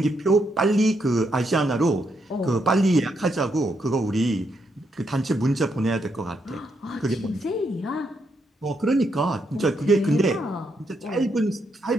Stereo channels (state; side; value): normal; both; correlation 0.78